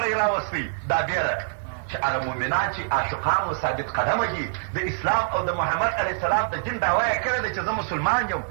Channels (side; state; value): left; silent; digital silence